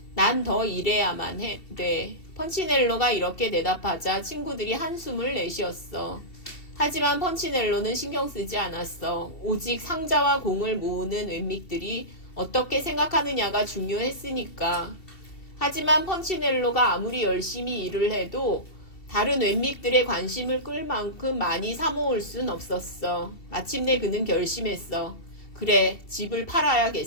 난 더 일해야만 돼. 펀치넬로가 이렇게 대답하자 친구들이 한숨을 내쉬었어. 하지만 펀치넬로는 신경 쓰지 않았어. 오직 상자와 공을 모으는 웬믹들이 어떻게 생각하느냐가 중요했으니까. 하지만 펀치넬로가 아무리 열심히 일을 해도 다른 웬믹들의 관심을 끌 만큼 많이 사모을 순 없었어. 마침내 그는 결심했어. 그래, 집을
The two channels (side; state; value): right; late; 2.7 ms